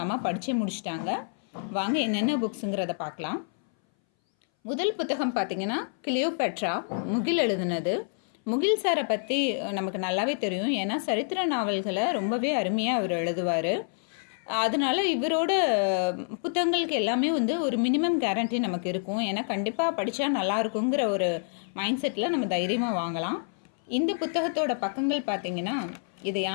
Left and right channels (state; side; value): silent; right; 59 dB below the other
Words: அம்மா படித்தே முடிச்சிட்டாங்க. வாங்க என்னென்ன புக்ஸுங்கிறத பார்க்கலாம். முதல் புத்தகம் பார்த்திங்கன்னா கிளியோபேட்ரா, முகில் எழுதுனது. முகில் சாரை பற்றி நமக்கு நல்லாவே தெரியும். ஏன்னா சரித்திர நாவல்களை ரொம்பவே அருமையாக அவர் எழுதுவார். அதனால் இவரோட புத்தகங்களுக்கு எல்லாமே ஒரு மினிமம் கேரண்டி நமக்கு இருக்கும். ஏன்னா கண்டிப்பாக படித்தா நல்லா இருக்குங்கிற ஒரு மைண்ட் செட்டில் நம்ம தைரியமாக வாங்கலாம். இந்த புத்தகத்தோட பக்கங்கள் பார்த்திங்கன்னா, இதை